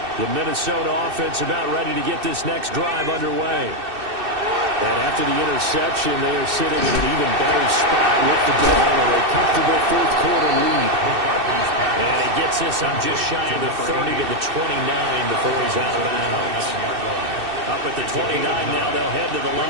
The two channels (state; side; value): late; left; 2.6 ms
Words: The Minnesota offense about ready to get this next drive underway. And after the interception, they are sitting in an even better spot with the ball and a comfortable 4th quarter lead. And he gets this on just shy of the 30 to the 29 before he's out of bounds. Up at the 29 now, they'll head to the